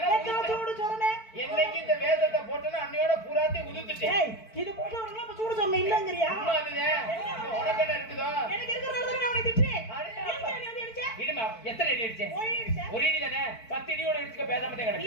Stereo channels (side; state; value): right; late; 4.5 ms